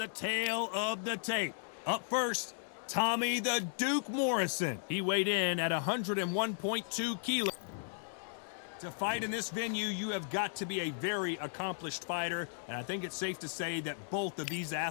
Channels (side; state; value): right; silent; digital silence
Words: tale of the tape. Up first, Tommy the Duke Morrison. He weighed in at 101.2 kilos. To fight in this venue, you have got to be a very accomplished fighter, and I think it's safe to say that both of these